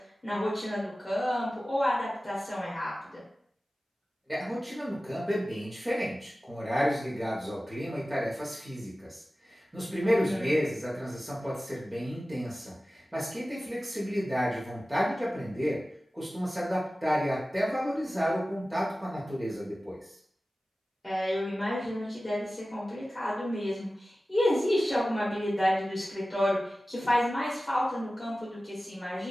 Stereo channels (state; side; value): normal; both; correlation 0.96